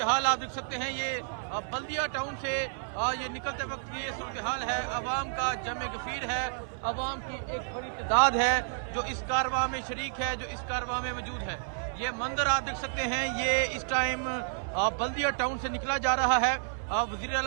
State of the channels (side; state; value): left; silent; 57 dB below the other